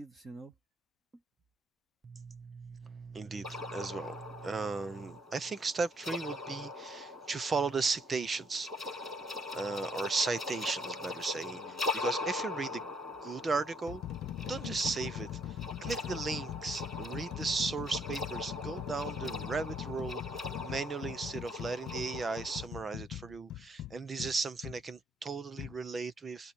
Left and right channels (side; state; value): both; normal; correlation 0.69